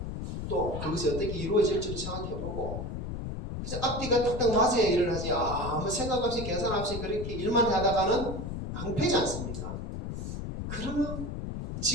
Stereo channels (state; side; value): noise; left; rumble, 5 dB below the sound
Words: 또 그것이 어떻게 이루어질지도 생각해보고 그래서 앞뒤가 딱딱 맞아야 일을 하지 아무 생각 없이 계산 없이 그렇게 일만 하다가는 낭패지 않습니까? 그러나